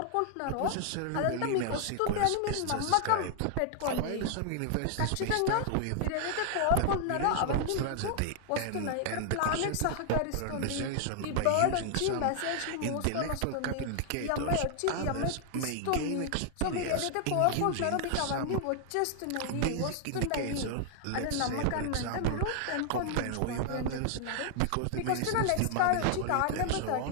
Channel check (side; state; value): both; different; correlation 0.00